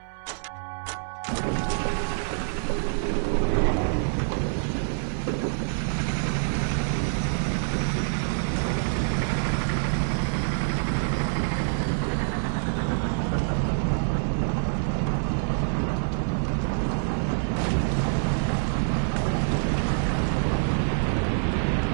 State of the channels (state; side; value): silent; left; 58 dB below the other